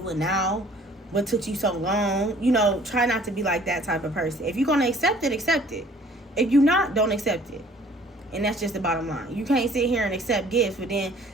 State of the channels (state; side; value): normal; both; correlation 0.55